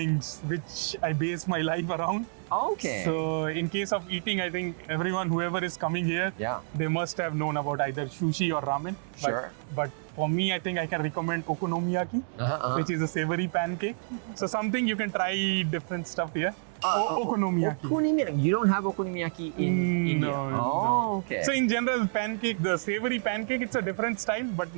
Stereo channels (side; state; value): left; silent; digital silence